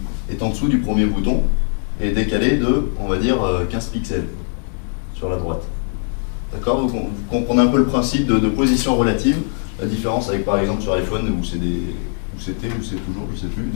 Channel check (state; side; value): silent; right; digital silence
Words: est en dessous du premier bouton et décalé de, on va dire, 15 pixels sur la droite. D'accord? Vous comprenez un peu le principe de position relative, la différence avec par exemple sur iPhone où c'est toujours, je sais plus,